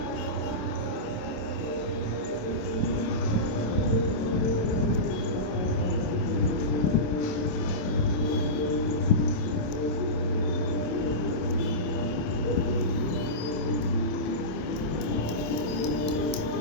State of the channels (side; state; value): right; late; 27 ms